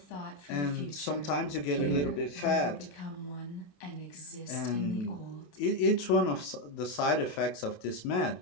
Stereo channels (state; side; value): late; right; 28 ms